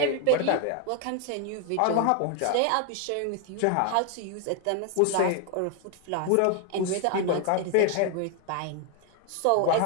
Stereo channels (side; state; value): both; different; correlation 0.00